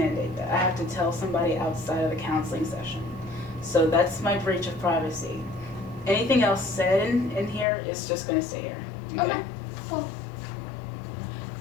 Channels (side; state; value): right; drops out; at 7.7 s